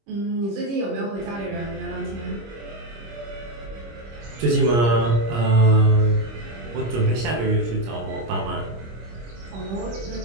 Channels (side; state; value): left; late; 25 ms